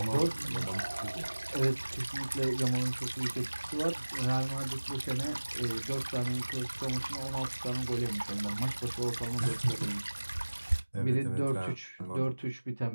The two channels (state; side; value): inverted; both; correlation -1.00